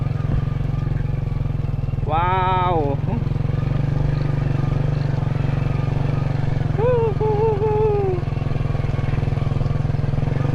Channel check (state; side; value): identical; both; correlation 1.00